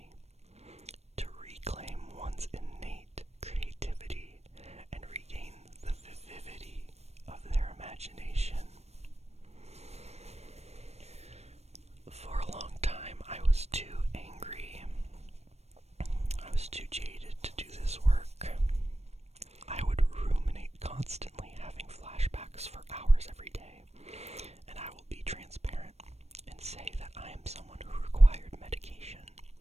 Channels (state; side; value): late; left; 0.31 ms